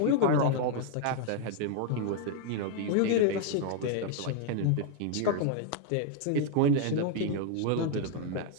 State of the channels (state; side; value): different; both; correlation 0.00